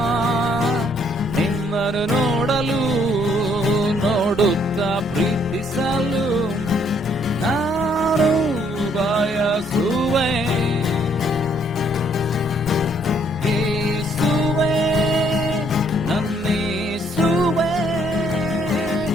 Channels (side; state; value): both; normal; correlation 0.67